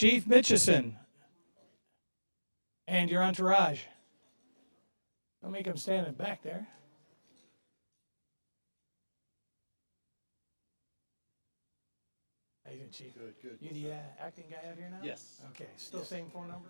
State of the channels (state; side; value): inverted; both; correlation -1.00